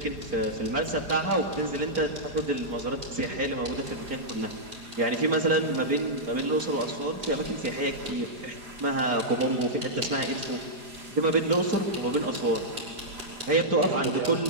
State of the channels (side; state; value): left; late; 4.9 ms